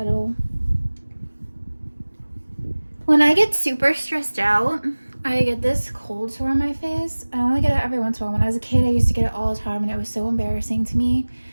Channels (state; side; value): inverted; both; correlation -1.00